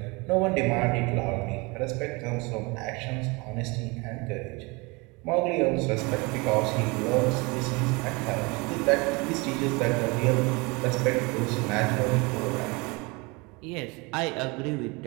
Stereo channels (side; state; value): left; quieter; 26.9 dB